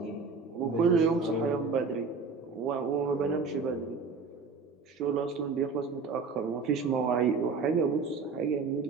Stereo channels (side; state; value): left; quieter; 4.7 dB